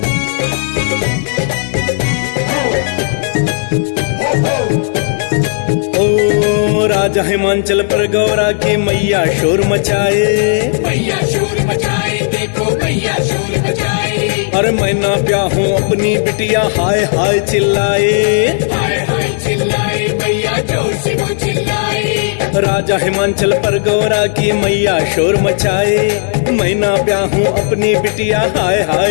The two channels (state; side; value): silent; right; digital silence